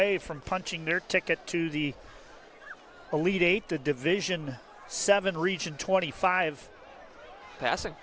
from punching their ticket to the Elite Eight, the Division 7 Region 25. Passing.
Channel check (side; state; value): both; identical; correlation 1.00